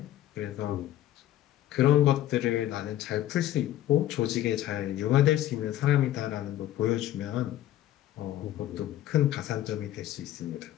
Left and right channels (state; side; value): quieter; right; 13.1 dB